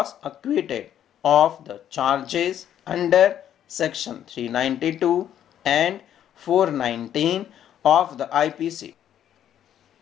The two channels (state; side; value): quieter; right; 10.4 dB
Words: acquitted of the charges under section 392 and 419 of the IPC.